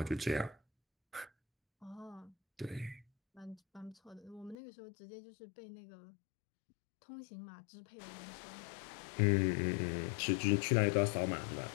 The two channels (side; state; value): right; drops out; at 4.5 s